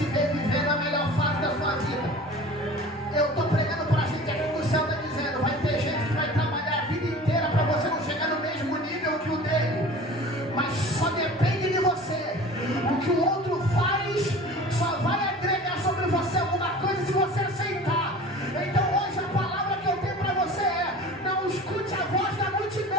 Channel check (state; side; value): normal; both; correlation 0.41